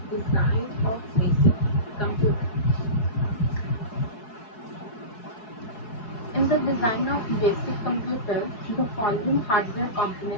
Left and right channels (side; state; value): right; late; 4.7 ms